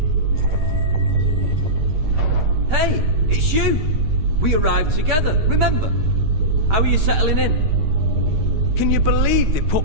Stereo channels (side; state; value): left; late; 9.7 ms